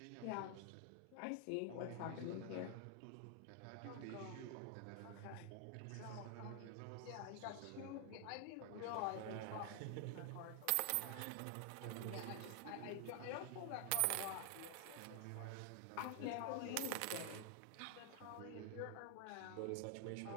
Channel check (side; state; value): both; different; correlation 0.00